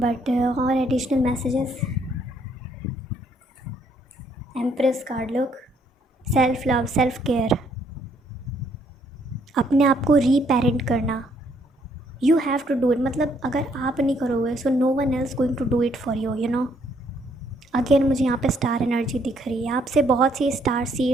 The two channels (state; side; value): normal; both; correlation 0.68